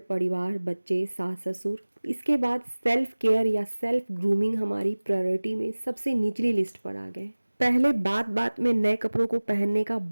परिवार बच्चे सास ससुर। इसके बाद सेल्फ केयर या सेल्फ ग्रूमिंग हमारी प्रायोरिटी में सबसे निचली लिस्ट पर आ गए। पहले बात बात में नए कपड़ों को पहनने का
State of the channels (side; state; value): both; inverted; correlation -1.00